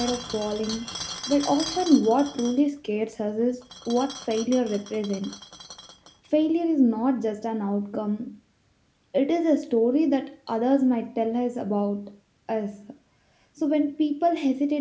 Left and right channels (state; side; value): identical; both; correlation 1.00